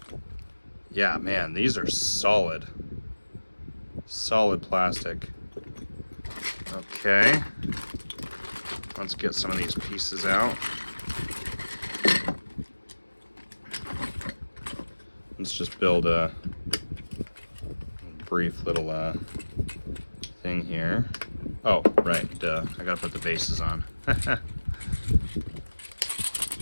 Yeah, man, these are solid plastic. Okay, let's get some of these pieces out. Let's just build a brief little thing here. Oh, right, duh. I gotta put the bases on.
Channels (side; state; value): both; inverted; correlation -1.00